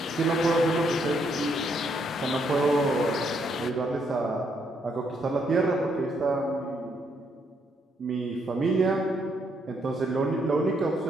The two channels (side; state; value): both; normal; correlation 0.74